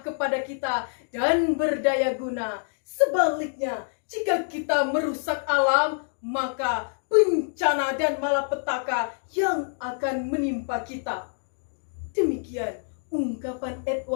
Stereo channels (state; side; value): silent; right; digital silence